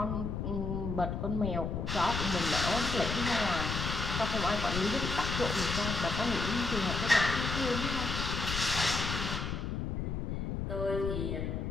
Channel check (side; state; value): left; noise; rumble, 2 dB below the sound